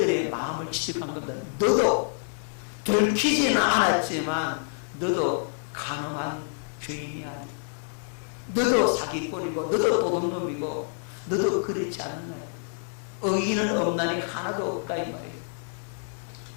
마음을 지적한 겁니다. 너도 들키지는 않았지만 너도 가늠한 죄인이야. 너도 사기꾼이고 너도 도둑놈이고 너도 그렇지 않나. 의인은 없나니 하나도 없다 이 말이에요.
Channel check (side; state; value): right; silent; digital silence